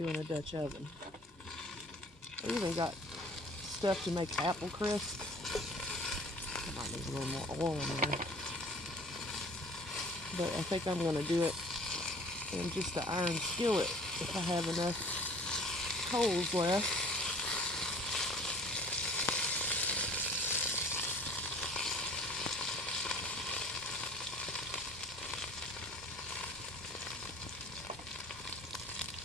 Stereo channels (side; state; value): both; normal; correlation 0.49